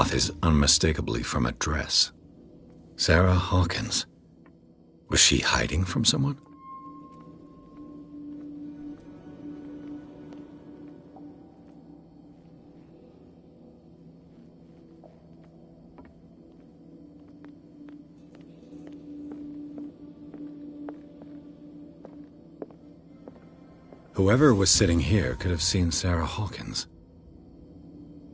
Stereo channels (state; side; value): identical; both; correlation 1.00